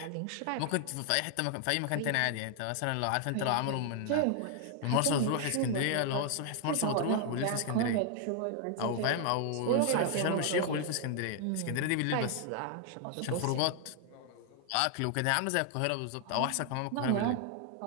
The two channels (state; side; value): different; both; correlation 0.00